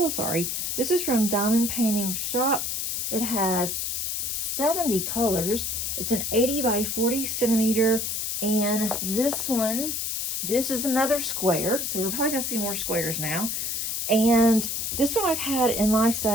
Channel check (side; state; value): left; noise; hiss, 1 dB below the sound